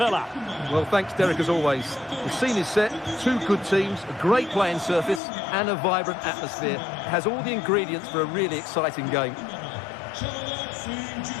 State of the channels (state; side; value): drops out; right; at 5.2 s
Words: Well, thanks, Derek, as always. The scene is set, two good teams, a great playing surface and a vibrant atmosphere. It has all the ingredients for a really exciting game.